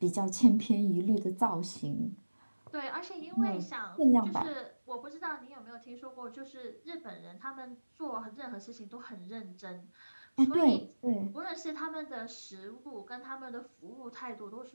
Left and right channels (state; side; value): inverted; both; correlation -1.00